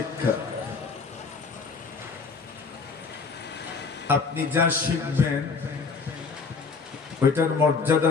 আপনি যা শিখবেন ওইটার মর্যাদা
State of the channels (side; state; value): right; quieter; 4.7 dB